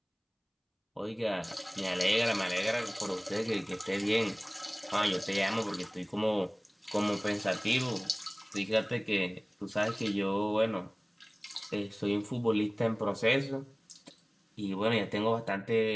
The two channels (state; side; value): identical; both; correlation 1.00